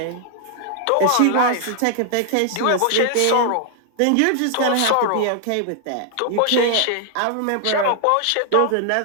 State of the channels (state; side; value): different; both; correlation 0.00